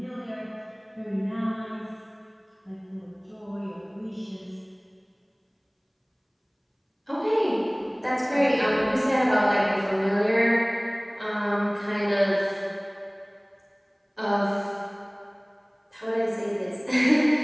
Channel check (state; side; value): identical; both; correlation 1.00